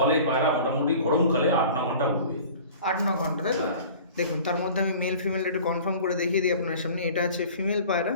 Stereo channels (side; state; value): both; inverted; correlation -0.44